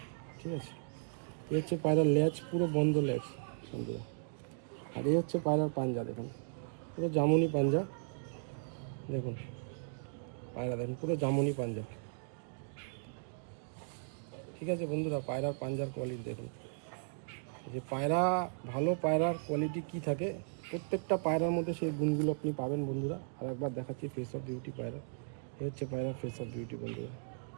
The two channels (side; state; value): left; silent; digital silence